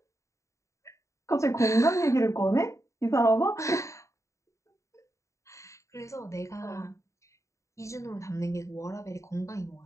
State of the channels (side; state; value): right; late; 0.15 ms